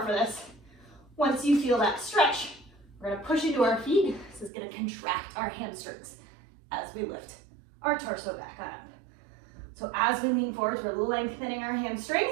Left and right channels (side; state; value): left; drops out; at 4.5 s